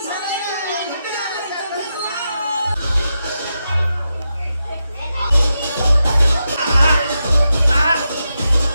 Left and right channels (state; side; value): inverted; both; correlation -0.87